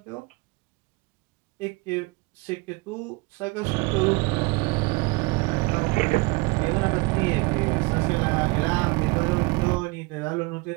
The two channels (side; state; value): left; quieter; 26.3 dB